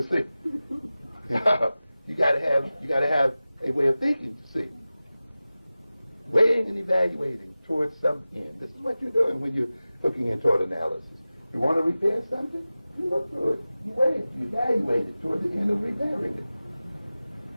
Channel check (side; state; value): both; inverted; correlation -0.96